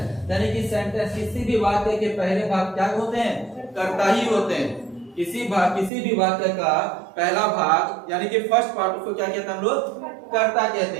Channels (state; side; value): drops out; left; at 5.9 s